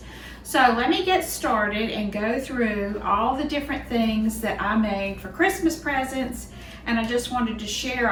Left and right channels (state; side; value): identical; both; correlation 1.00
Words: So let me get started and go through all the different things that I made for Christmas presents, and I just wanted to